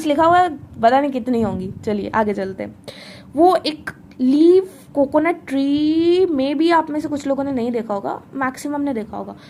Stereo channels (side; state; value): both; identical; correlation 1.00